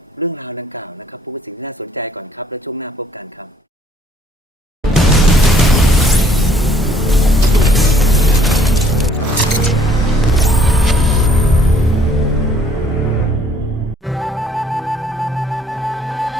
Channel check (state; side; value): normal; both; correlation 0.61